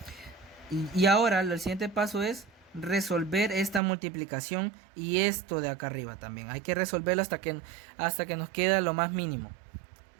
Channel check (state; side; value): drops out; left; at 3.8 s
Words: Y ahora el siguiente paso es resolver esta multiplicación y esto de acá arriba también. Hay que resolverlo hasta que nos queda lo más mínimo.